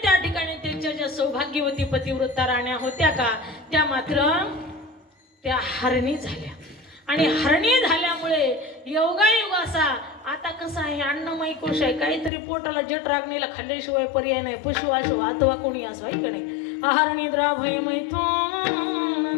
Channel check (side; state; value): right; drops out; at 12.3 s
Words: त्या ठिकाणी त्यांच्या ज्या सौभाग्यवती पतिव्रता राण्या होत्या का, त्या मात्र त्या हरणी झाल्या. आणि हरणी झाल्यामुळे योगायोग असा, आता कसं आहे अन्नमय कोश आहे, काहीतरी पोटाला जट रागणीला खाल्ल्याशिवाय पर्याय नाही, पशु असो अथवा कोणी असो, आहे का नाही. हरणी द्राभय